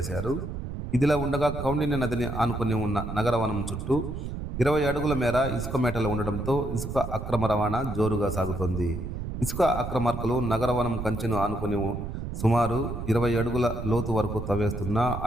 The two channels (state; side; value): noise; right; rumble, 6 dB below the sound